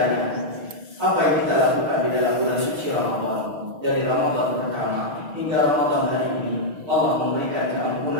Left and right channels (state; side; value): late; left; 6.3 ms